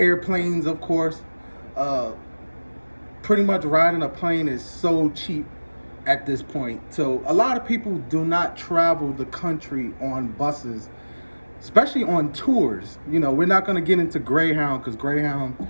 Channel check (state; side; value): inverted; both; correlation -1.00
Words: of course. Pretty much riding a plane is so cheap at this point. So a lot of people do not travel the country on buses, especially on tours. We're not going to get into Greyhound, because Greyhound